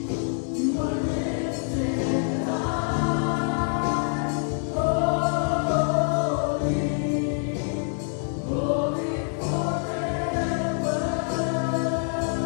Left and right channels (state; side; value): silent; right; 61 dB below the other